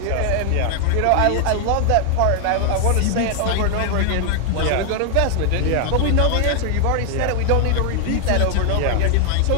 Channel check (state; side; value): different; both; correlation 0.00